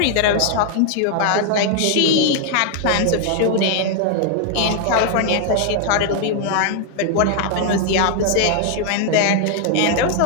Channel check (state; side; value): different; both; correlation 0.00